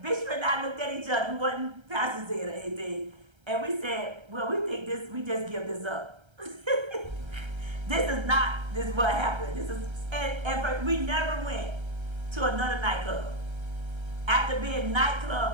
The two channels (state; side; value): late; left; 1.3 ms